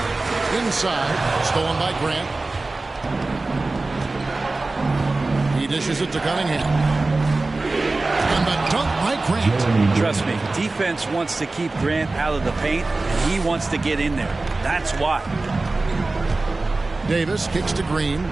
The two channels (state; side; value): quieter; left; 3.3 dB